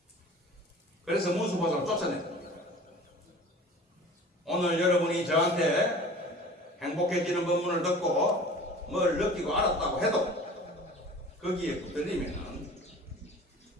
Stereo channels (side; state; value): both; normal; correlation 0.42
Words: 그래서 문수보살을 쫓아냈습니다. 오늘 여러분이 저한테 행복해지는 법문을 듣고 뭘 느끼고 알았다고 해도 거기에 붙들리면